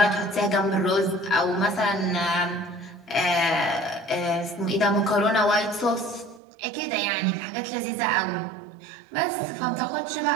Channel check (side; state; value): left; drops out; at 6.4 s